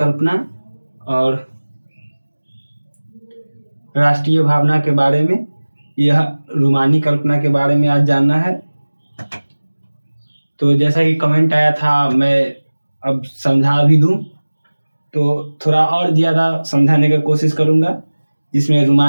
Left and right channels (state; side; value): inverted; both; correlation -1.00